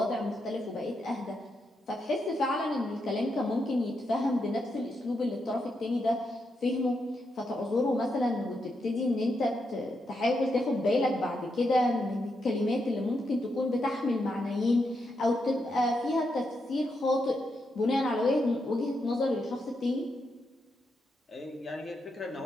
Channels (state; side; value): normal; both; correlation 0.83